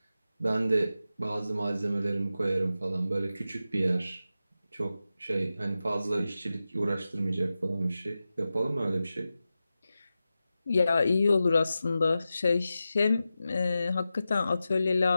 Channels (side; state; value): both; inverted; correlation -0.92